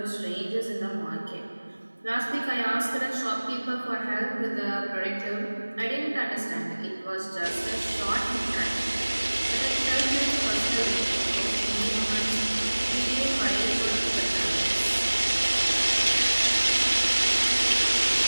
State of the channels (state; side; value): inverted; both; correlation -1.00